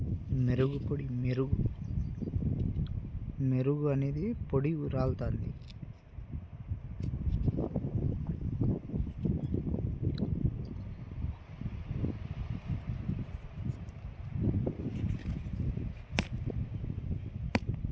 మెరుగు అనేది పొడి రాలుతుంది.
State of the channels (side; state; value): both; identical; correlation 1.00